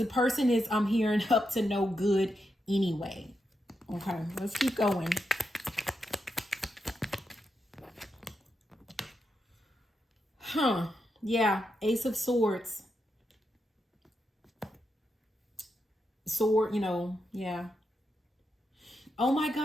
person is, I'm hearing, up to no good anyway. Okay, let's keep going. Yeah, Ace of Swords. Sword, you know, yeah. Oh my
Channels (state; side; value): normal; both; correlation 0.85